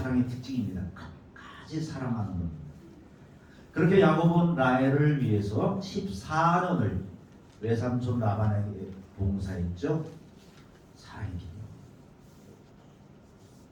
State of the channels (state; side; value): identical; both; correlation 1.00